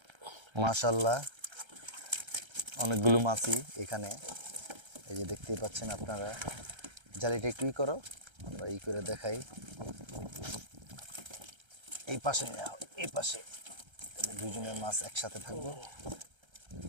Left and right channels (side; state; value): left; late; 1.3 ms